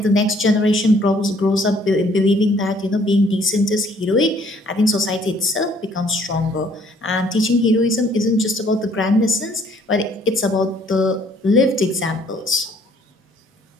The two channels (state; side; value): normal; both; correlation 0.61